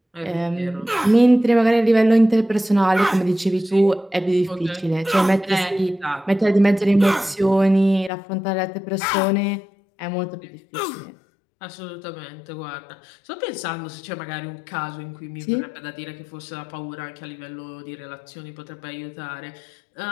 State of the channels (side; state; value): right; drops out; at 8.1 s